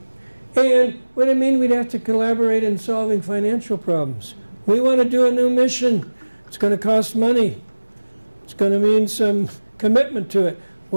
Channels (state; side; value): inverted; both; correlation -1.00